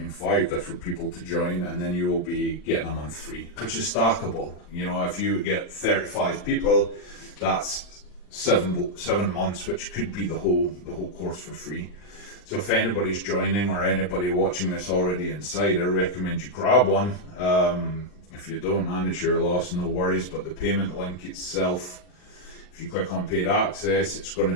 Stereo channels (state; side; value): late; right; 39 ms